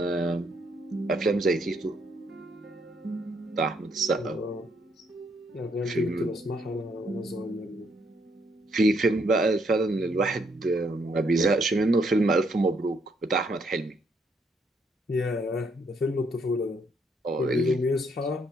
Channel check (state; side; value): normal; both; correlation 0.72